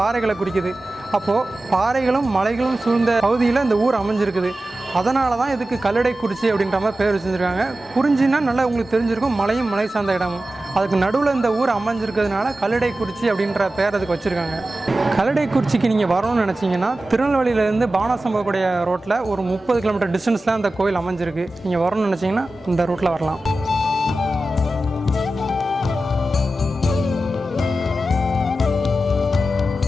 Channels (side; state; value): both; normal; correlation 0.94